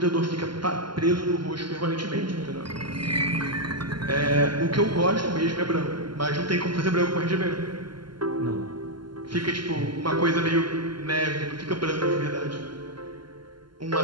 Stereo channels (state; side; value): late; left; 0.72 ms